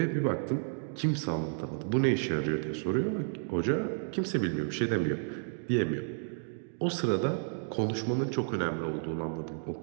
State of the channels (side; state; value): left; silent; digital silence